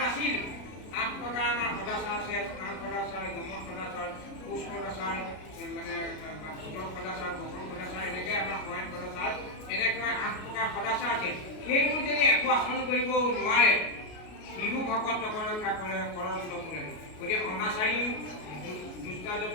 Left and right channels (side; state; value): right; late; 33 ms